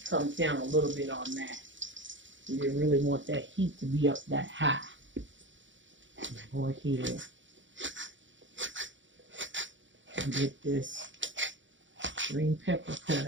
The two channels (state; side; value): late; left; 0.55 ms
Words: comes down a little bit on that. You didn't really want that heat to be up that high. Go ahead and get this green pepper cut